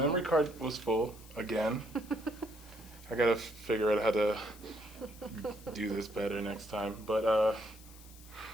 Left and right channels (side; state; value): left; noise; hiss, 21 dB below the sound